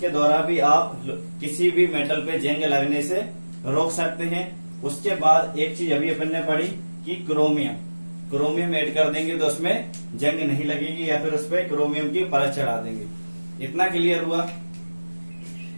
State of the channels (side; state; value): both; inverted; correlation -1.00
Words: द्वारा भी आप किसी भी मेटल पे जंग लगने से रोक सकते हैं। उसके बाद एक चीज अभी अपन ने पढ़ी कि क्रोमियम ऐड कर देंगे तो उसमें जंग नहीं लगेगी, या फिर उस पर क्रोमियम की परत चढ़ा देंगे। इतना क्लियर हुआ।